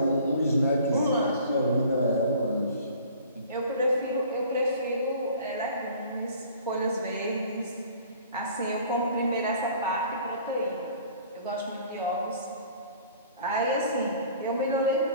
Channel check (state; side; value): inverted; both; correlation -0.49